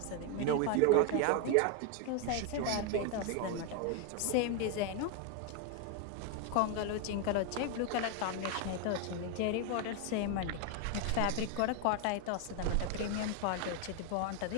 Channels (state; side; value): different; both; correlation 0.01